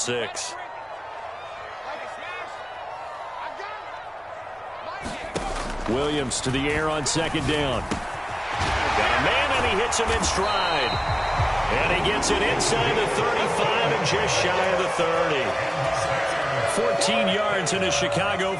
Williams to the air on 2nd down. Got a man, and he hits him in stride. And he gets it inside the 35 and just shy of the 30. 14 yards and a Chicago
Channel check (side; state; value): both; identical; correlation 1.00